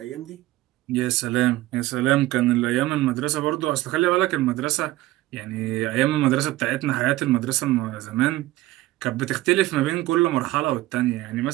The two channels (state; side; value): quieter; left; 17.1 dB